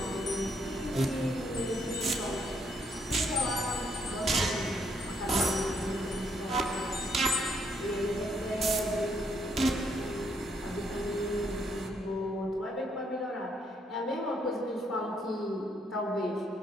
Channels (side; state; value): both; normal; correlation 0.71